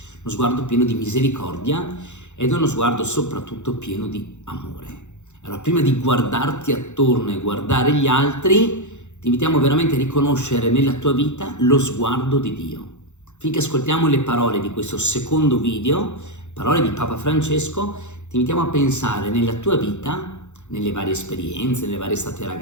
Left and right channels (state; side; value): late; right; 0.83 ms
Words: uno sguardo pieno di misericordia ed è uno sguardo soprattutto pieno di amore. Allora, prima di guardarti attorno e guardare gli altri, ti invitiamo veramente a riconoscere nella tua vita lo sguardo di Dio. Finché ascoltiamo le parole di questo secondo video, parole di Papa Francesco, ti invitiamo a pensare nella tua vita, nelle varie esperienze, nelle varie estate